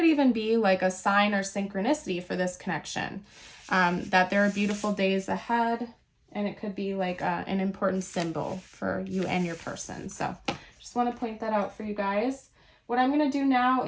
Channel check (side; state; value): both; identical; correlation 1.00